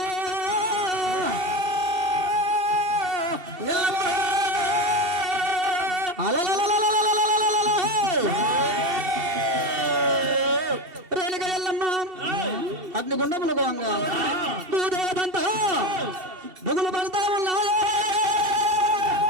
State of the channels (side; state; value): left; late; 2.7 ms